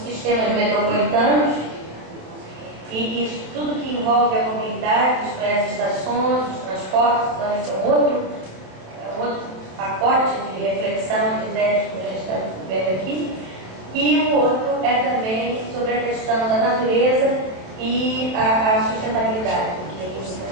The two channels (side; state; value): left; late; 28 ms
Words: metropolitanos e isso tudo que envolve a mobilidade, isto é, as estações, os transportes. Então esse é um outro pacote de reflexão, de ideias que a gente está vendo aqui. E o outro é também sobre a questão da natureza e a sustentabilidade, que os